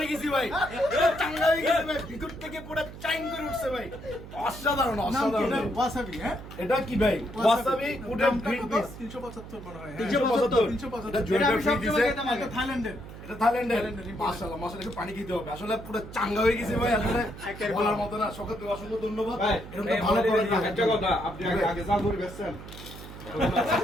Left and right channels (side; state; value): right; noise; hum, 14 dB below the sound